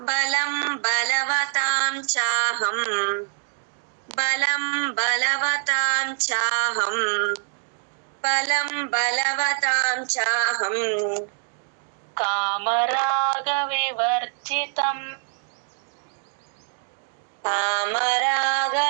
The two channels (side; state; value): left; silent; 60 dB below the other